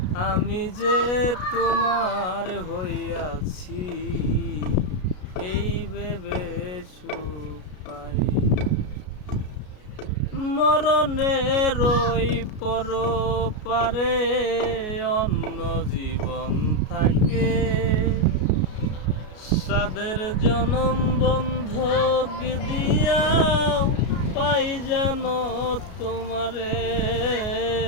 আমি যে তোমার হইয়াছি এই ভেবে সুখ পাই। মরণের ওই পরপারে অন্য জীবন থাকে, সাদের জনম বন্ধক দিয়াও পাই যেন তোমারে।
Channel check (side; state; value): right; late; 33 ms